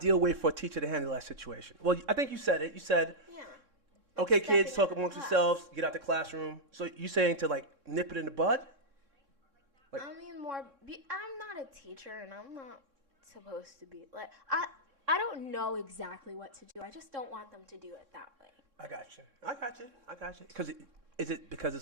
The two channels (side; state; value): left; late; 3.6 ms